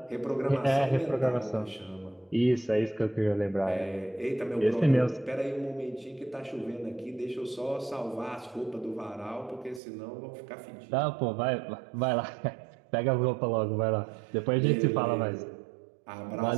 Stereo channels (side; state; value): left; drops out; at 9.8 s